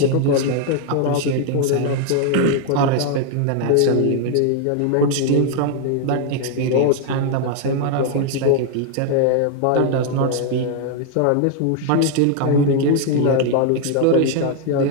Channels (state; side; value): different; both; correlation 0.00